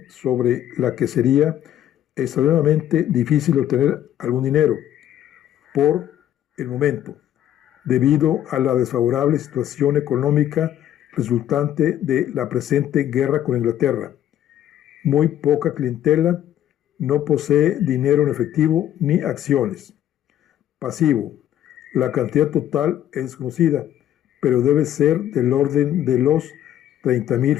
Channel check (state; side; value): quieter; right; 11.5 dB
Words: sobre la que sería extremadamente difícil obtener algún dinero por el momento, debido a la desfavorable situación económica resultante de la presente guerra con Inglaterra. Muy poca clientela, no posee dinero en efectivo ni acciones. Pasivo: la cantidad total es desconocida, pero debe ser del orden de los 30,000